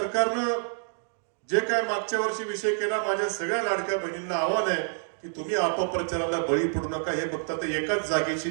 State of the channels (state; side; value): silent; left; digital silence